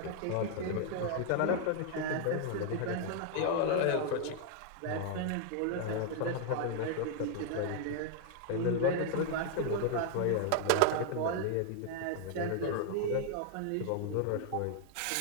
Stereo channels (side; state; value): both; different; correlation 0.00